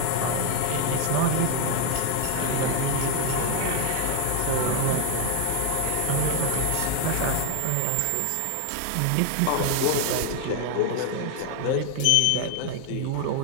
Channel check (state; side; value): different; both; correlation 0.01